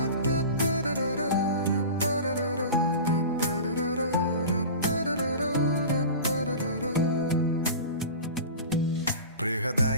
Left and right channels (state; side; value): inverted; both; correlation -0.33